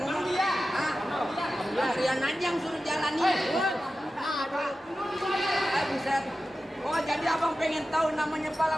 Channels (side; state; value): both; normal; correlation 0.93